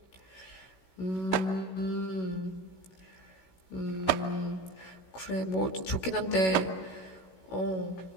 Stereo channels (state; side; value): late; right; 16 ms